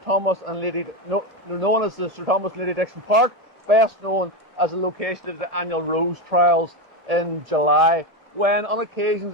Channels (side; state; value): both; normal; correlation 0.13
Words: and Lady, known as the Sir Thomas and Lady Dixon Park, best known as the location of the annual Rose Trials in July, when on occasions,